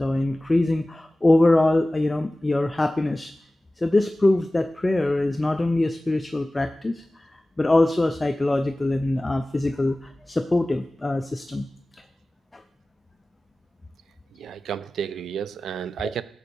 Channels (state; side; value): normal; both; correlation 0.97